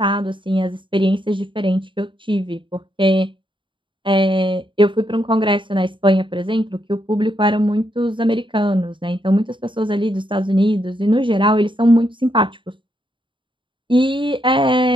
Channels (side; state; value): left; late; 0.24 ms